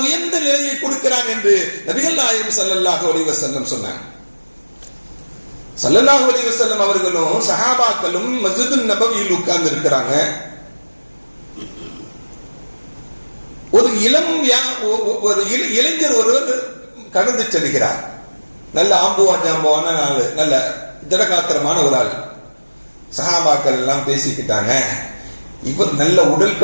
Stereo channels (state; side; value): inverted; both; correlation -1.00